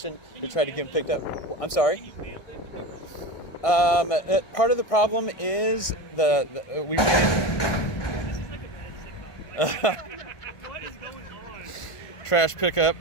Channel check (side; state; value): right; late; 1.6 ms